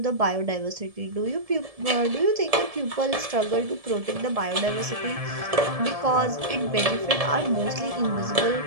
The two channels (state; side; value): late; left; 1.7 ms